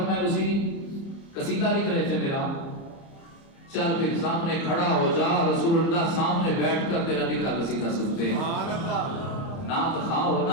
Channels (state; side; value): late; right; 30 ms